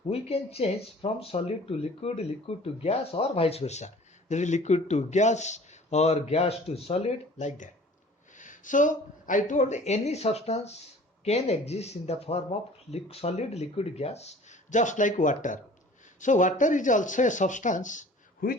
we can change from solid to liquid, liquid to gas, or vice versa. There is liquid to gas or gas to solid, like that. So I told any substance can exist in the form of solid, liquid, gas, just like water. So water is also a substance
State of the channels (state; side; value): normal; both; correlation 0.47